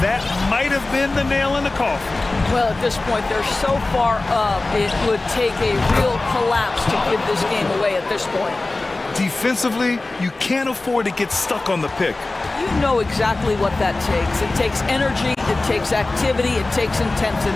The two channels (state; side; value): quieter; right; 3.1 dB